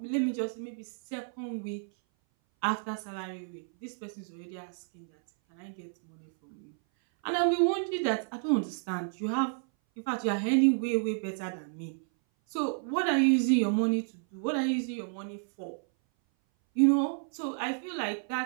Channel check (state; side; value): silent; left; 57 dB below the other